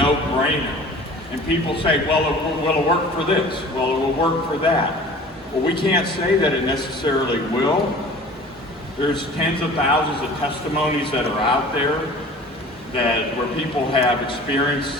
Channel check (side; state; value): both; normal; correlation 0.44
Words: And people say, well, will it work for this? Well, it will work for that. Well, we can't say that it necessarily will. There's tens of thousands of testimonies that are out there where people have